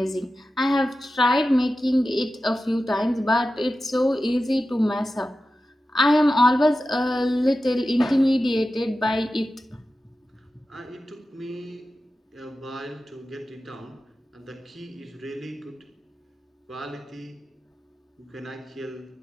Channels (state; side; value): normal; both; correlation 0.93